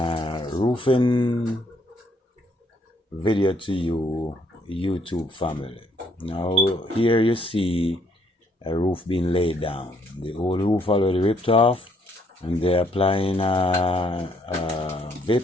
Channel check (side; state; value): both; normal; correlation 0.68